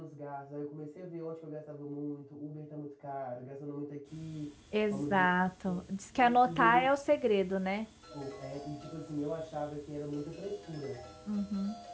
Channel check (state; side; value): identical; both; correlation 1.00